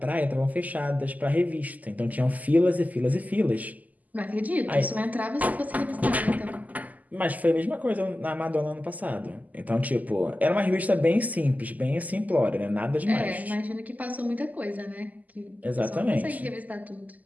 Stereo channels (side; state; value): left; late; 0.079 ms